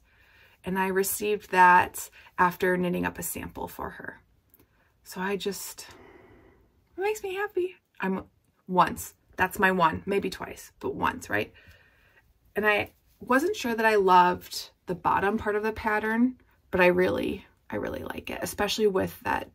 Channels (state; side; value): identical; both; correlation 1.00